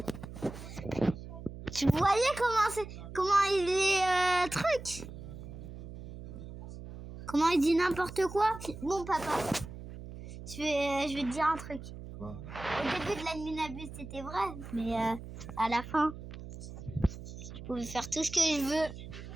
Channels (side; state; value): right; noise; hum, 12 dB below the sound